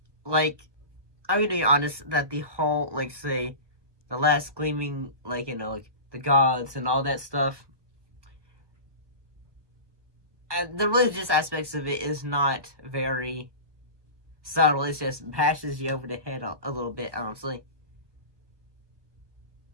that the whole, say, the last Gleaming, the gods and all that stuff, the religious aspects of it is not very subtle. It just bashes you over the head a little bit, honestly.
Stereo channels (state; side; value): late; left; 1.1 ms